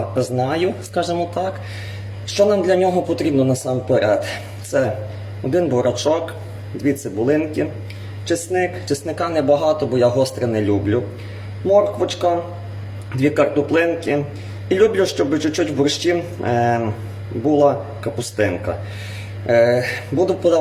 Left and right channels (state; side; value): identical; both; correlation 1.00